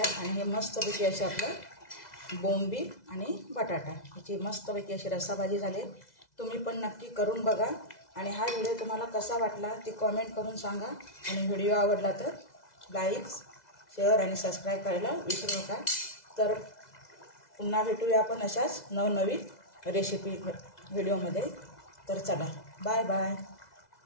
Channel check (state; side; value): late; right; 2.0 ms